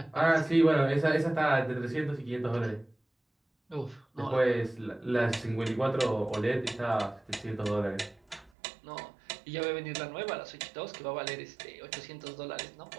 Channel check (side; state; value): left; drops out; at 8.5 s